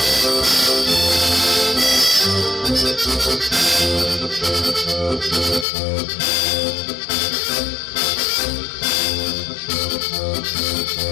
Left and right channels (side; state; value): right; drops out; at 5.7 s